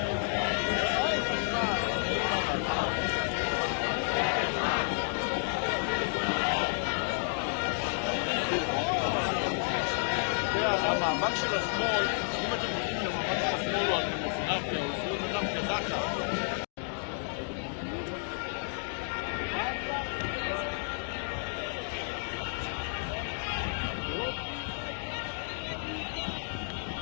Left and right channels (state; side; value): silent; right; 57 dB below the other